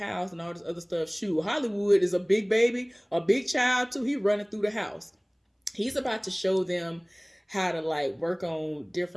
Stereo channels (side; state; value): both; identical; correlation 1.00